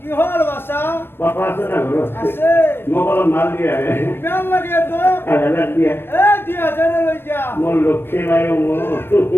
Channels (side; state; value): right; late; 0.11 ms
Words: কি হল বাসা পাপা আছে না ঘৰত আছে মোক অলপ মাল দিয়া কিমান লাগে তো 1000 দিয়া এ দিয়া জানে লৈ যা মোৰ লক্ষ্মী নাই মোৰ